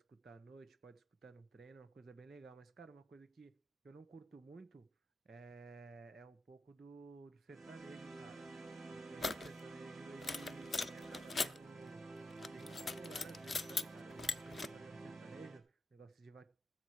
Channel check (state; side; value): normal; both; correlation 0.86